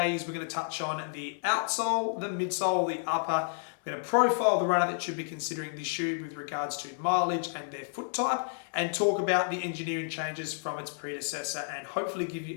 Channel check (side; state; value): right; silent; 57 dB below the other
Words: is we're going to touch on the outsole, the midsole, the upper. We're going to profile the runner that should be considering this shoe with regards to mileage and their foot type, and talk about the engineering changes from its predecessor, and hopefully give